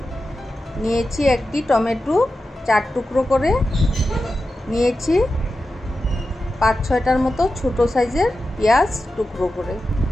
নিয়েছি একটি টমেটো 4 টুকরো করে নিয়েছি, 5-6টার মতো ছোট সাইজের পেঁয়াজ টুকরো করে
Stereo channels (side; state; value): both; normal; correlation 0.92